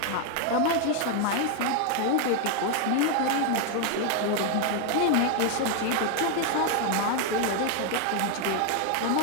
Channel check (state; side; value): different; both; correlation 0.01